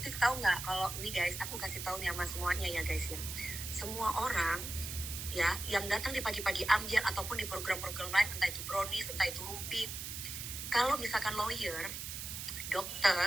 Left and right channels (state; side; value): noise; right; hiss, 6 dB below the sound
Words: tahu nggak kalau ini guys, aku kasih tahu nih sama semuanya ya guys ya. Semua orang ya yang datang di pagi-pagi ambiar ataupun di program-program lain, entah itu brownies, entah itu rumpi, kalau misalkan lawyer,